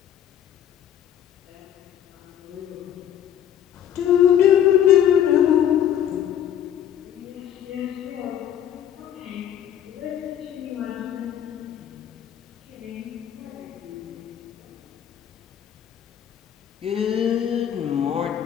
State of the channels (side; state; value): right; quieter; 10.2 dB